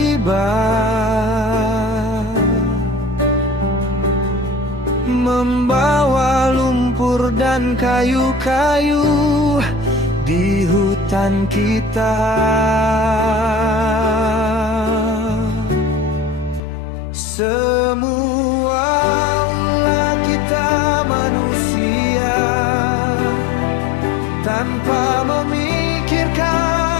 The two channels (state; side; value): drops out; right; at 16.6 s